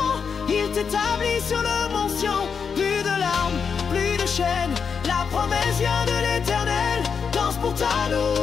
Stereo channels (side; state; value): right; quieter; 6.2 dB